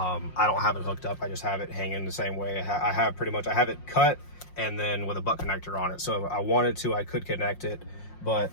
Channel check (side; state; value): right; late; 5.6 ms